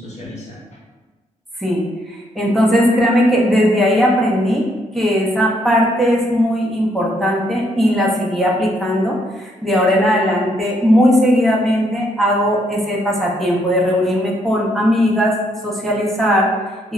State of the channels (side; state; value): both; normal; correlation 0.73